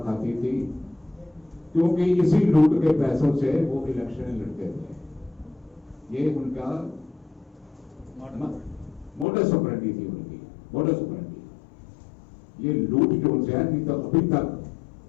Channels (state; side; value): drops out; right; at 9.2 s